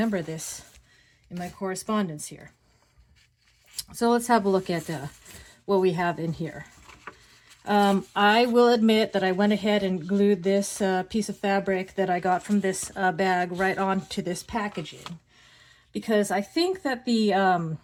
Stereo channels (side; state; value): both; identical; correlation 1.00